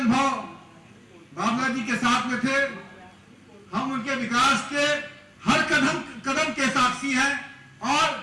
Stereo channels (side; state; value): both; identical; correlation 1.00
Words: बाबला जी के साथ में थे, हम उनके विकास के हर कदम के साक्षी हैं। और